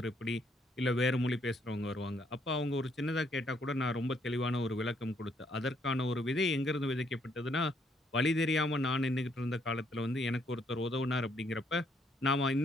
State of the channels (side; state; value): both; normal; correlation 0.70